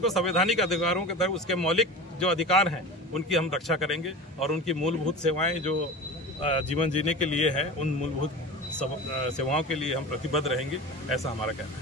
को संवैधानिक अधिकारों के तहत उसके मौलिक जो अधिकार हैं उनकी हम रक्षा करेंगे और उनकी मूलभूत सेवाएं जो जीवन जीने के लिए है, उन मूलभूत सेवाओं के लिए हम प्रतिबद्ध रहेंगे, ऐसा हमारा कहना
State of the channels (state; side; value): normal; both; correlation 0.31